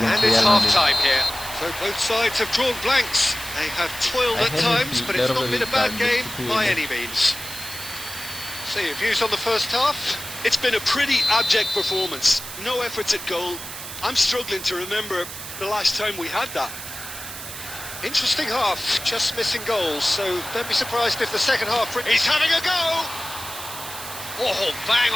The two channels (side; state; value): right; noise; hiss, 10 dB below the sound